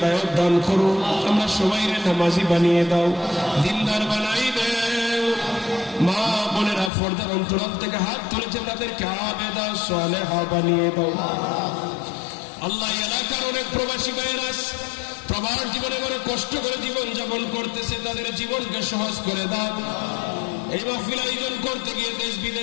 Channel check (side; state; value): right; drops out; at 6.9 s